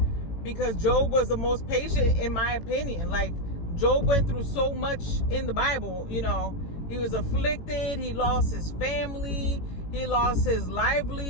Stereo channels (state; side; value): late; right; 18 ms